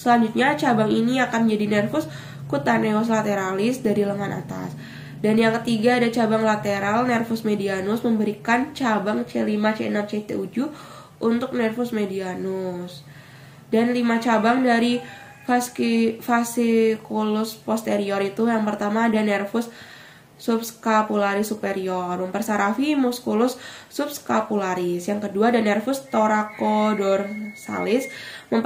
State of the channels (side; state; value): both; identical; correlation 1.00